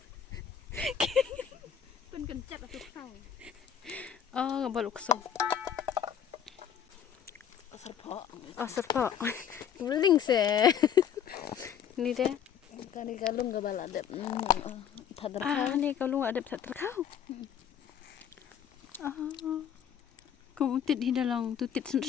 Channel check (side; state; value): right; quieter; 8.7 dB